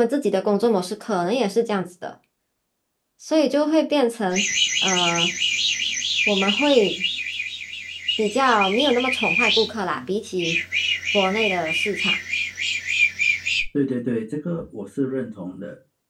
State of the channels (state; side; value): identical; both; correlation 1.00